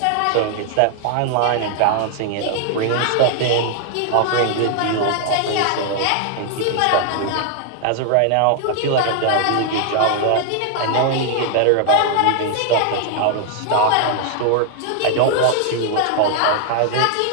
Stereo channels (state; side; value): different; both; correlation 0.00